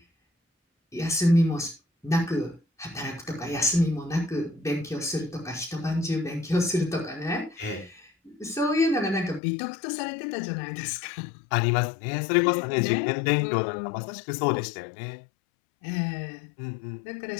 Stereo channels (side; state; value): right; drops out; at 9.4 s